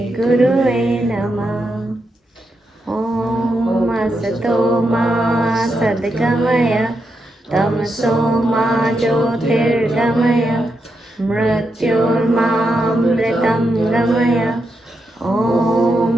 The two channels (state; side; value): normal; both; correlation 0.84